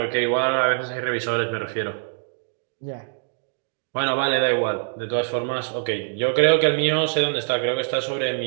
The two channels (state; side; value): silent; left; digital silence